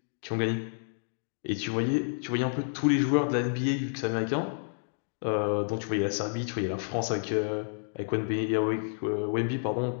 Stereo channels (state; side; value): silent; right; digital silence